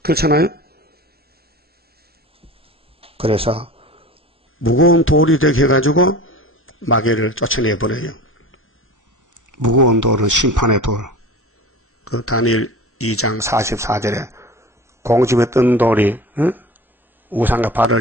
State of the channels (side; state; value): both; normal; correlation 0.36